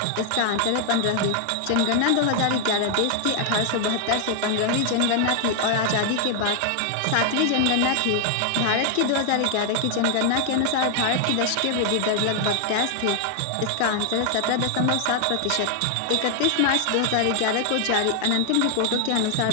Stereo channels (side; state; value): both; different; correlation 0.00